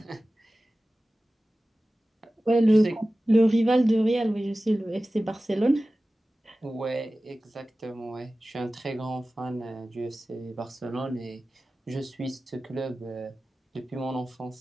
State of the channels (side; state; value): both; normal; correlation 0.96